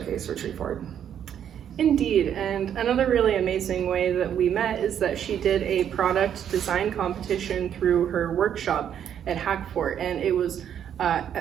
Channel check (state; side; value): quieter; left; 9.3 dB